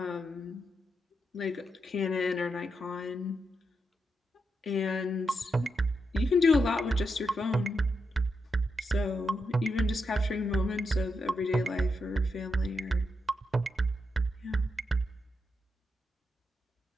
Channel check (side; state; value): both; normal; correlation 0.84